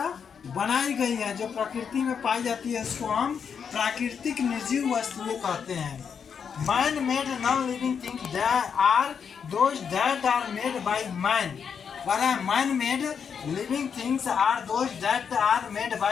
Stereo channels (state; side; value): quieter; right; 6.9 dB